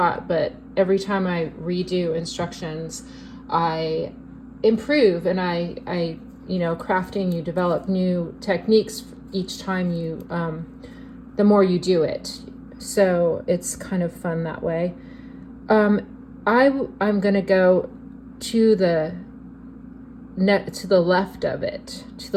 but every time I redo instructions I improve, and I you know, crafting, you develop new techniques each time you the more you do it, so it's kind of fun that way. I'm gonna go to the left of it, to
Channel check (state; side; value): identical; both; correlation 1.00